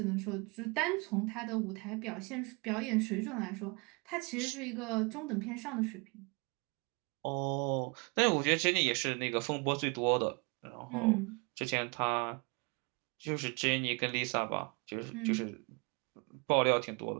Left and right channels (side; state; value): left; quieter; 30.3 dB